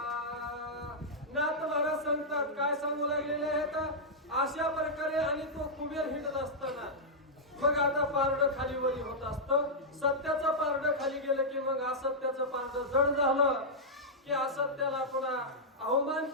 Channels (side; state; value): both; normal; correlation -0.09